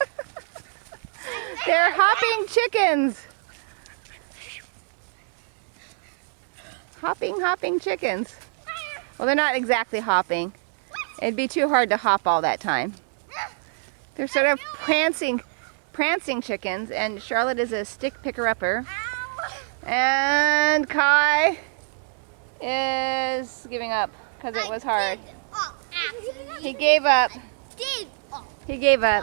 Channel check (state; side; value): silent; left; digital silence